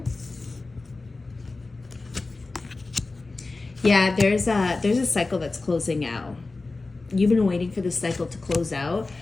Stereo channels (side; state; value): right; quieter; 3.5 dB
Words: Yeah, there's a cycle that's closing out. You've been waiting for this cycle to close out